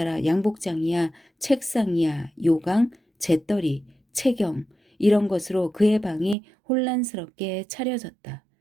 양복장이야 책상이야 요강 재떨이 채경 이런 것으로 그의 방이 혼란스럽게 차려졌다.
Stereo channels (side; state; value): left; drops out; at 6.4 s